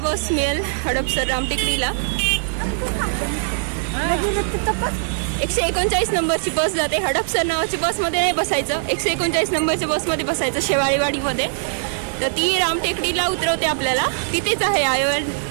मिळेल हडपसर रामटेकडीला. 139 नंबरची बस जाते. हडपसर नावाची बसमध्ये नाही बसायचं, 139 नंबरच्या बसमध्ये बसायचं शेवाळेवाडीमध्ये. तर ती रामटेकडीला उतरवते आपल्याला. तिथेच आहे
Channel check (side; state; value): left; silent; digital silence